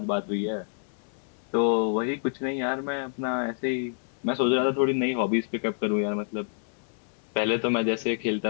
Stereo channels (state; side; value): silent; right; digital silence